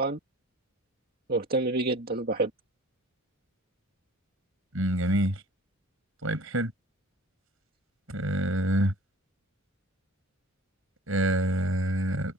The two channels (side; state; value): both; normal; correlation 0.45